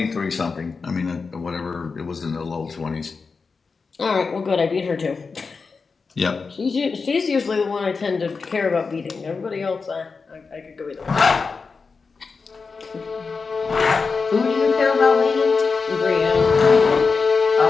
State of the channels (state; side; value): quieter; right; 4.7 dB